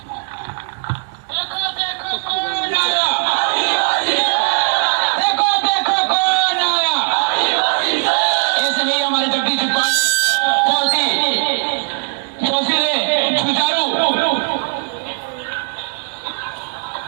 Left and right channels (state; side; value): silent; left; digital silence